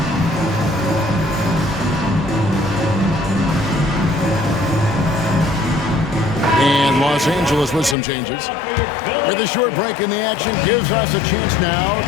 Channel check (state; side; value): drops out; right; at 8.0 s